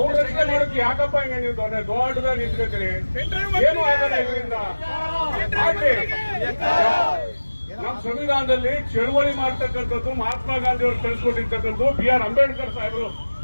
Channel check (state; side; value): inverted; both; correlation -1.00